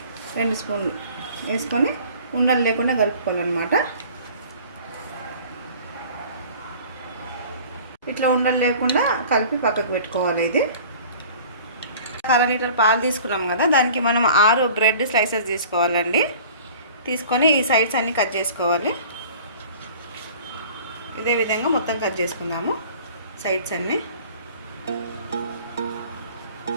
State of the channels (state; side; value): inverted; both; correlation -0.46